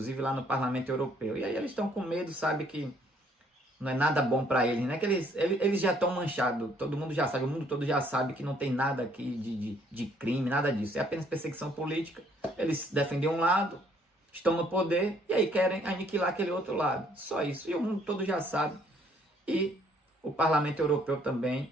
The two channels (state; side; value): normal; both; correlation 0.64